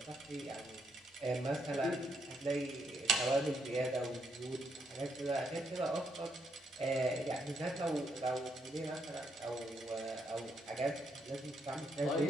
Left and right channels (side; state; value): both; normal; correlation 0.76